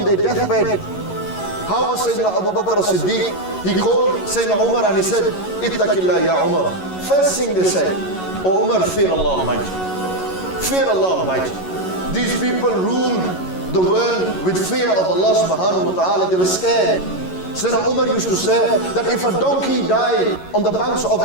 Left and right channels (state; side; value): late; right; 11 ms